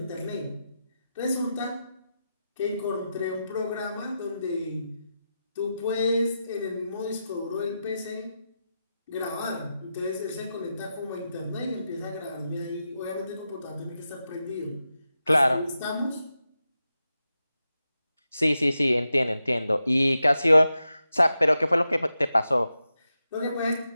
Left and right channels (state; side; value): inverted; both; correlation -0.89